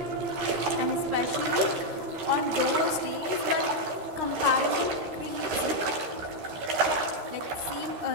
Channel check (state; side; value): late; left; 13 ms